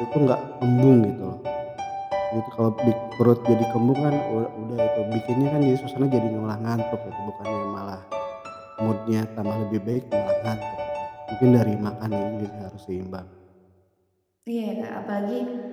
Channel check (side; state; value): both; identical; correlation 1.00